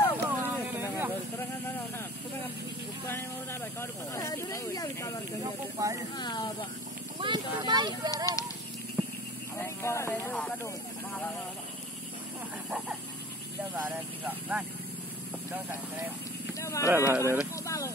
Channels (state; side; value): normal; both; correlation 0.42